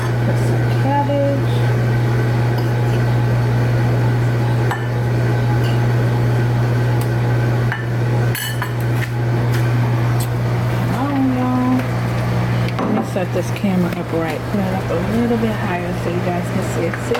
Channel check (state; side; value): identical; both; correlation 1.00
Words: Put some cabbage. Set this camera up right, put it up a little bit higher so you guys can see it.